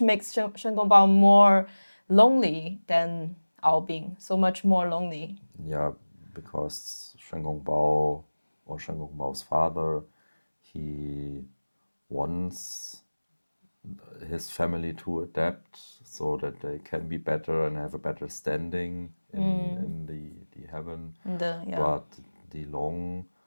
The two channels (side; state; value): both; inverted; correlation -1.00